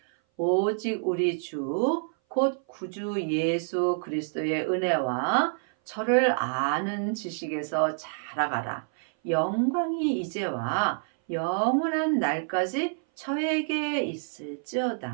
오직 우리 주, 곧 구주 예수 그리스도의 은혜와 저를 아는 지식에서 자라가라. 영광이 이제와 영원한 날까지 저에게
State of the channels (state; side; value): silent; left; 57 dB below the other